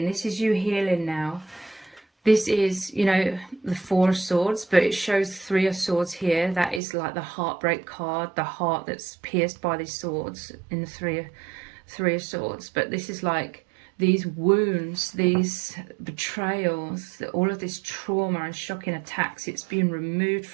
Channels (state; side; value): drops out; left; at 6.8 s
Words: this is you healing now. This is, you know, the Four of Swords, but it shows Three of Swords here. That is like the heartbreak card, the heart that's pierced by these swords in the Three of Swords. But this is like these wounds, these betrayals, all of this trauma and shocking attacks. It's being removed